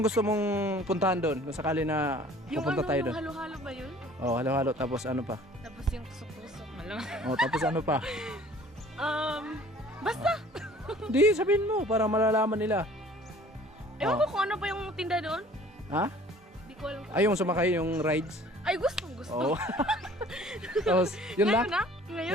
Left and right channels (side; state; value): both; normal; correlation 0.51